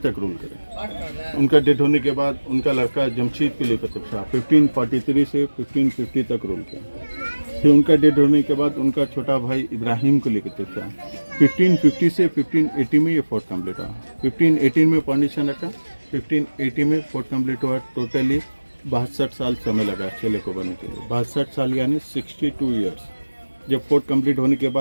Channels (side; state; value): both; inverted; correlation -1.00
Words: रूल करे। उनका डेथ होने के बाद उनका लड़का जमशीद कुली कुतुब शाह 1543 से 1550 तक रूल किया। फिर उनका डेथ होने के बाद उनका छोटा भाई इब्राहिम कुली कुतुब शाह 1550 से 1580 में ये फोर्ट कम्प्लीट हुआ। 1518 में फाउंडेशन रखा, 1580 में फोर्ट कम्प्लीट हुआ। टोटली 62 साल समय लगा किले को बनने के लिए, 62 साल यानी 62 ईयर्स। जब फोर्ट कंप्लीट होने के